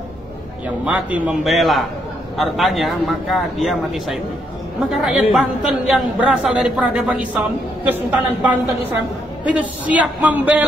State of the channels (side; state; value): both; normal; correlation 0.75